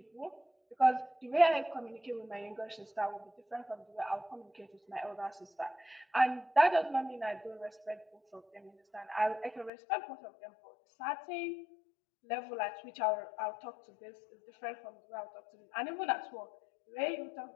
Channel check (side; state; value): right; drops out; at 9.7 s